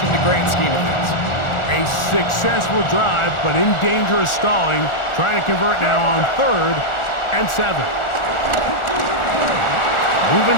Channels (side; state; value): right; late; 1.4 ms